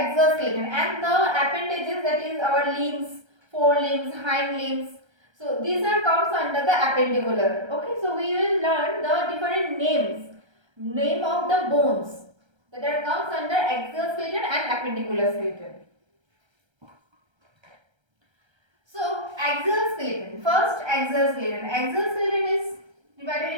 skeleton, and the appendages, that is our limbs, forelimbs, hind limbs. So these are comes under the appendicular. Okay, so we will learn the different name of the bones that are comes under axial skeleton and appendicular skeleton. So axial skeleton. First, axial skeleton. Axial skeleton is divided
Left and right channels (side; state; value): left; late; 1.3 ms